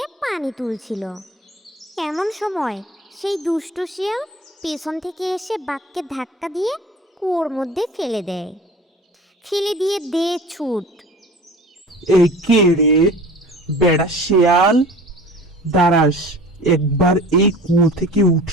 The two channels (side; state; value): both; normal; correlation 0.41